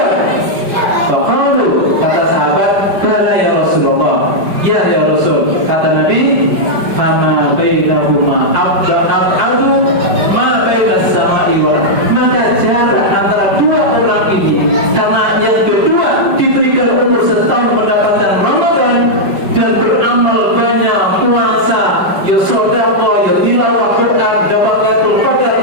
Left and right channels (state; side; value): late; left; 5.2 ms